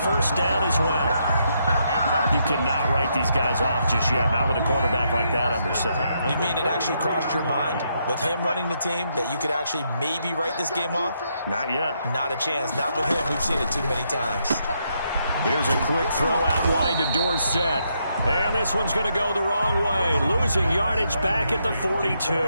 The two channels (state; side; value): inverted; both; correlation -0.77